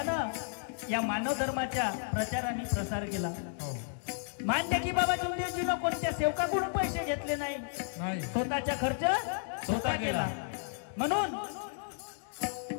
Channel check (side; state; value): right; silent; digital silence